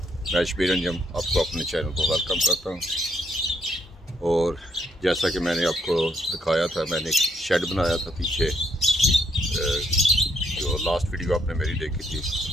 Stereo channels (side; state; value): both; normal; correlation 0.72